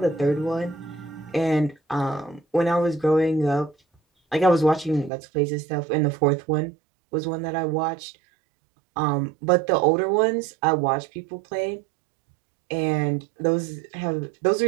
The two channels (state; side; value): drops out; left; at 5.1 s